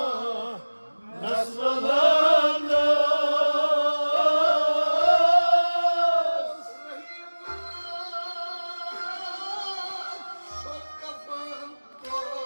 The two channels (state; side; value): inverted; both; correlation -1.00